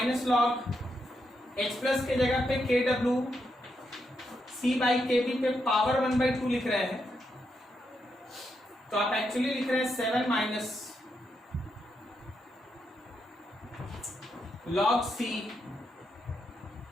लॉग H प्लस के जगह पे KW C बाई KB पे पावर 1/2 लिख रहे हैं, तो आप एक्चुअली लिख रहे हैं 7 minus log C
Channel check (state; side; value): normal; both; correlation 0.82